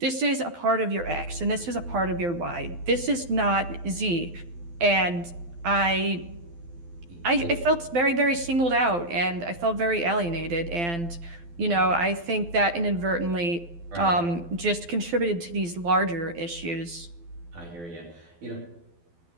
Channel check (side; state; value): left; late; 12 ms